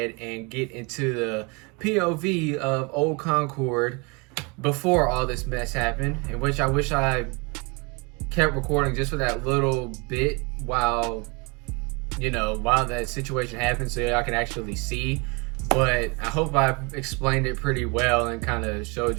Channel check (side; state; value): left; quieter; 30.0 dB